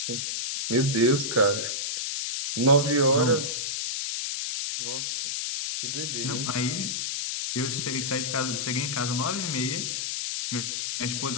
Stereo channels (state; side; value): noise; left; hiss, 2 dB below the sound